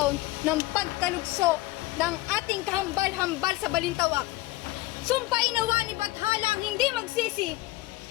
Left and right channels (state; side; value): quieter; right; 18.8 dB